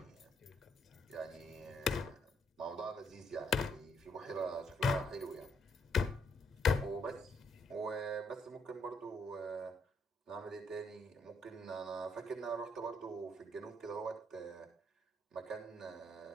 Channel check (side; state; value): both; normal; correlation 0.73